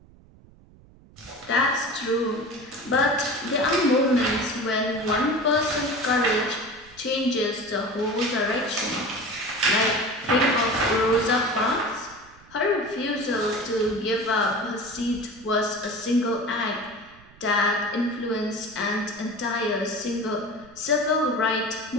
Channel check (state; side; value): noise; right; rumble, 25 dB below the sound